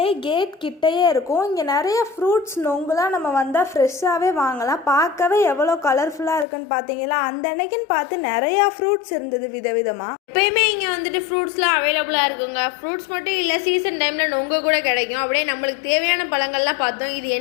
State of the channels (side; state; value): right; drops out; at 6.5 s